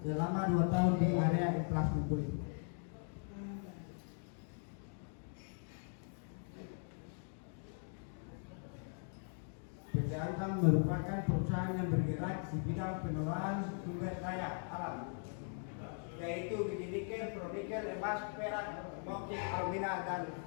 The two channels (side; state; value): right; silent; 51 dB below the other